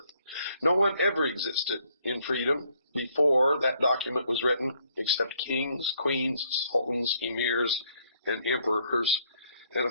No one ever existed in freedom before that document was written except kings, queens, sultans, emirs, and emperors. And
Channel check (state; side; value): inverted; both; correlation -0.68